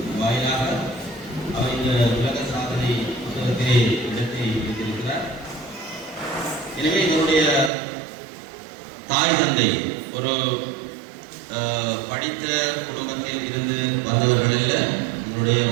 வாயிலாக அவர் இந்த உலக சாதனை புத்தகத்திலே இடத்தை வைத்திருக்கிறார். எனவே இதனுடைய தாய் தந்தை ஒரு படித்த குடும்பத்தில் இருந்து வந்தவர்களில் இதனுடைய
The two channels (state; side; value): drops out; left; at 7.7 s